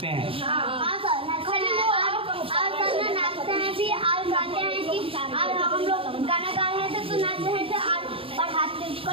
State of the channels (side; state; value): left; late; 0.27 ms